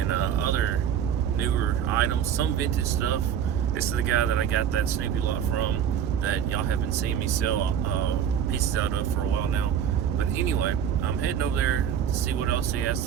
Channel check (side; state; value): left; quieter; 8.8 dB